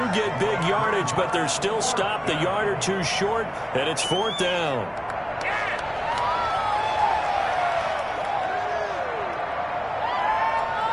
get big yardage, but they're still stopped a yard or two short, and it's fourth down.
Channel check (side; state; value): both; identical; correlation 1.00